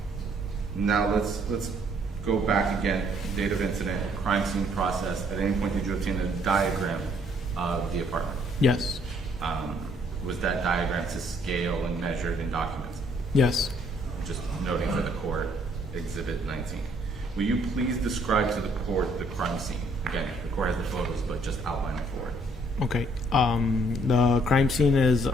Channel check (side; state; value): both; normal; correlation 0.65